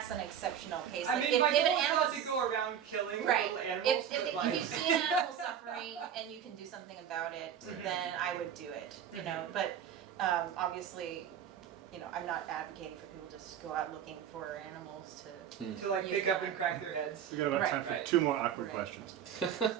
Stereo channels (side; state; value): left; quieter; 9.0 dB